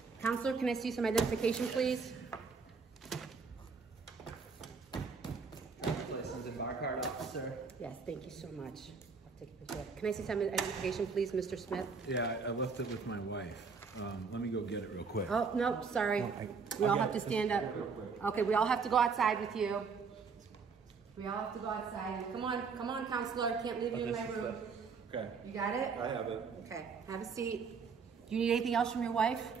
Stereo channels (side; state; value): left; quieter; 5.3 dB